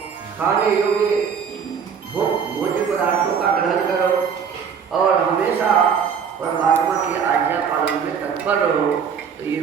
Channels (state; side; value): quieter; left; 6.9 dB